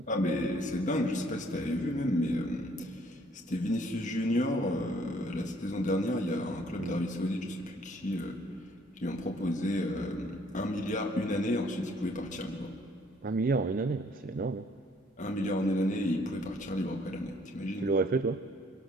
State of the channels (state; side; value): normal; both; correlation 0.63